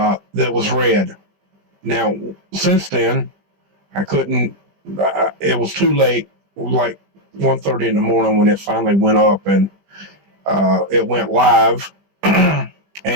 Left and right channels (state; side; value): late; left; 20 ms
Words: was red. Now, since then, I couldn't, it was too late, like 1:30 in the morning when it finally went up, and it went live,